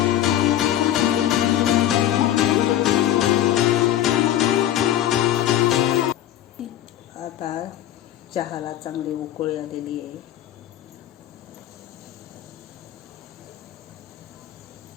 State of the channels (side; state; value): right; quieter; 12.2 dB